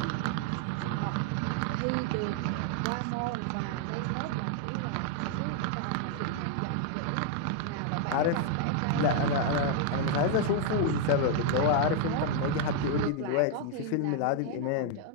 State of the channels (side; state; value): both; different; correlation 0.00